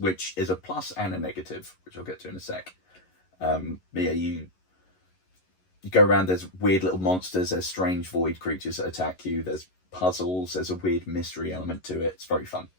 is a plus and a negative, which I'll get to in a sec. But yeah, you go around, there's weird little monsters, there's strange void creatures that attack you, there's puzzles, there's a weird mystery element to it. It's very fun.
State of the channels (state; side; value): late; right; 11 ms